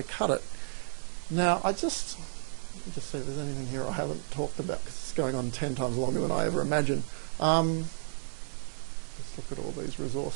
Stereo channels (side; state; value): left; silent; 55 dB below the other